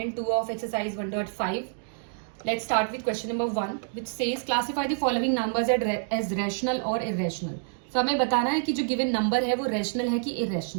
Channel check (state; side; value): silent; left; digital silence